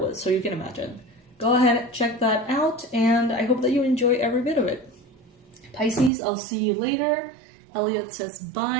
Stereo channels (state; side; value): drops out; left; at 6.1 s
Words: so you can imagine. Go ahead, check that out, and I hope that you enjoy every bit of it. Pisces, I'll see you later. Elliot says